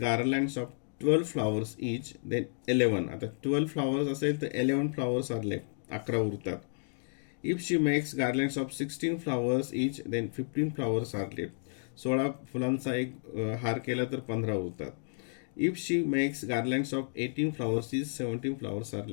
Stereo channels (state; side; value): silent; right; digital silence